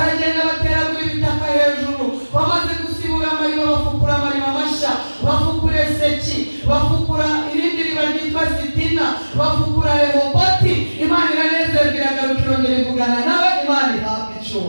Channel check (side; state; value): both; inverted; correlation -1.00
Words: bateragura ibitaka hejuru. Bamaze gusibura amariba, bafukura amariba mashya, bafukura Eseki, bafukura irindi riba ryitwa Sitina, bafukura Rehoboti. Imana iranezerwa, iragaruka irongera ivugana nawe. Imana ihabwe